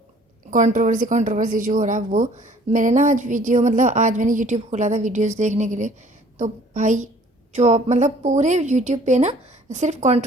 कंट्रोवर्सी कंट्रोवर्सी जो हो रहा है वो। मैंने ना आज वीडियो मतलब आज मैंने यूट्यूब खोला था वीडियोस देखने के लिए, तो भाई जो मतलब पूरे यूट्यूब पे ना सिर्फ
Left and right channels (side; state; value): both; normal; correlation 0.55